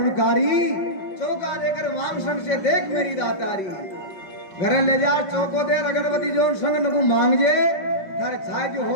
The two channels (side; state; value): right; late; 5.2 ms